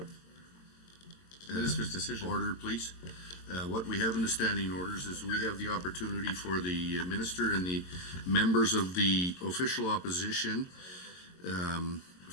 Minister's decision. order, please. What we have in the standing orders is we have the opportunity for the minister and the members of the official opposition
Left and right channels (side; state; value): right; late; 22 ms